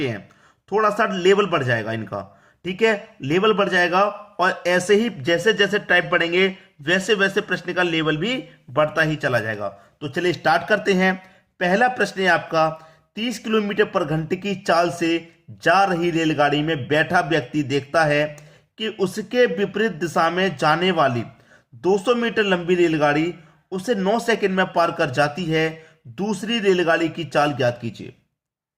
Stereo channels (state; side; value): identical; both; correlation 1.00